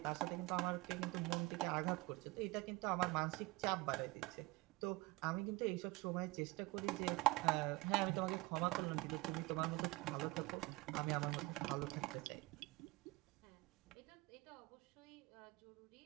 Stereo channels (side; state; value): left; quieter; 21.6 dB